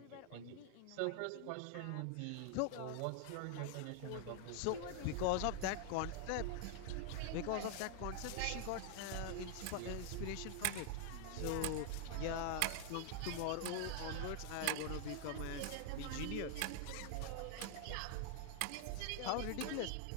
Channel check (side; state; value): both; different; correlation 0.00